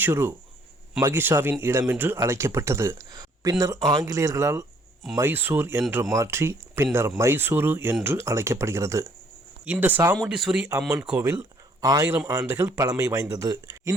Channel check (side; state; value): both; normal; correlation 0.63